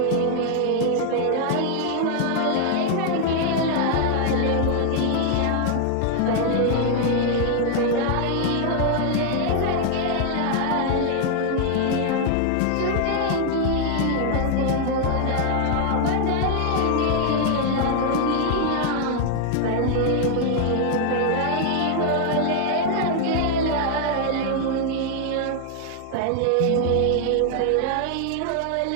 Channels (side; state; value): both; different; correlation 0.00